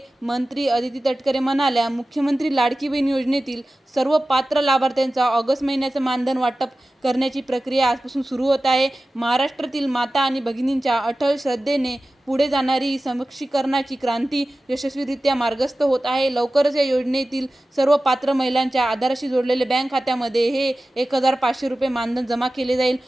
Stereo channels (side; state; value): both; normal; correlation 0.95